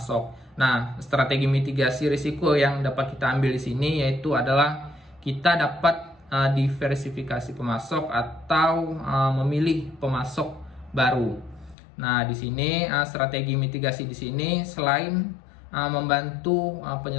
Nah, strategi mitigasi risiko yang dapat kita ambil di sini yaitu adalah kita dapat diversifikasi pemasok atau memilih pemasok baru. Nah, di sini strategi mitigasi di sini selain membantu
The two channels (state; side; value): drops out; right; at 11.8 s